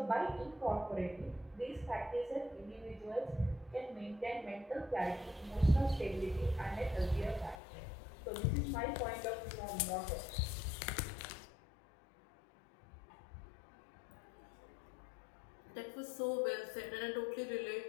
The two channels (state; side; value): drops out; right; at 7.6 s